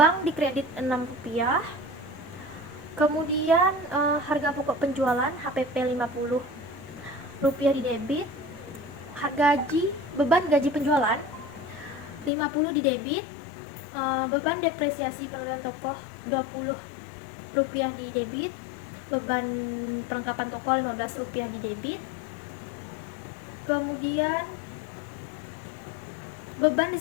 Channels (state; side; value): drops out; right; at 12.3 s